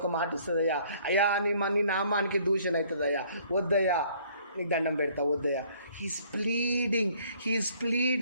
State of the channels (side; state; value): both; inverted; correlation -0.60